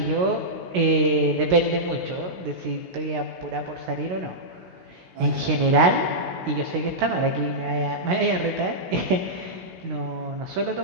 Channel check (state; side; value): late; left; 16 ms